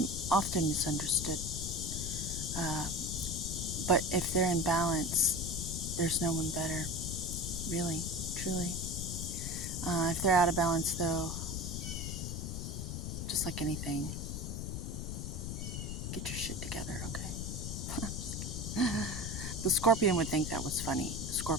often misunderstood, but if they're in balance, there's no one better, really, truly. If they're out of balance, though, just like anything, get your shit together, okay? The scorpion would think that was funny. The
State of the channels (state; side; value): noise; left; rumble, 4 dB below the sound